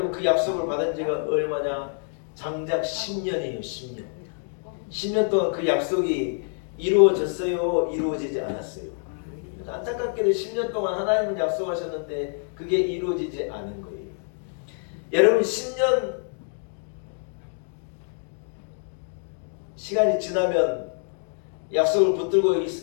그 약속을 받은 지가 얼마냐? 장작 10년이에요. 10년. 10년 동안 그 약속이 이루어졌어요? 이루어지지 않았어요? 안타깝게도 10년 동안 하나님은 약속하셨는데 그게 이루어지지 않은 거예요. 여러분, 10년 시간이 지나면 약속을 붙들고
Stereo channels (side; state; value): right; silent; 61 dB below the other